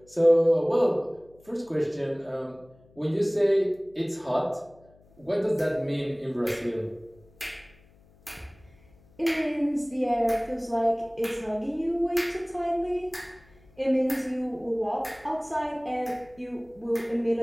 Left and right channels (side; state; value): left; noise; hum, 28 dB below the sound